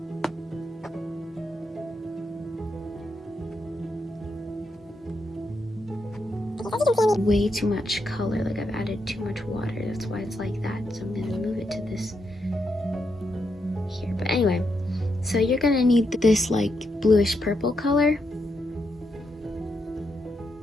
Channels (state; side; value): normal; both; correlation 0.82